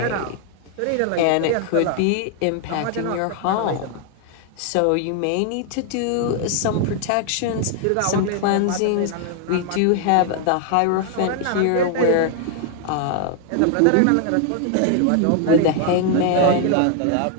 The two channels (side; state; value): both; different; correlation 0.00